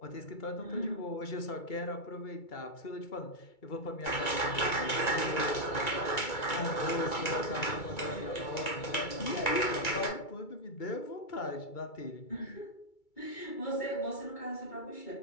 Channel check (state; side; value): late; right; 2.3 ms